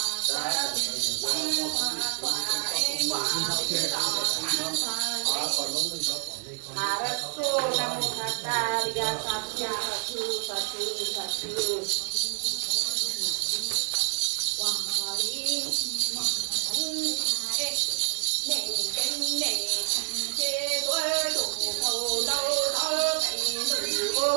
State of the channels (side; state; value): left; silent; 57 dB below the other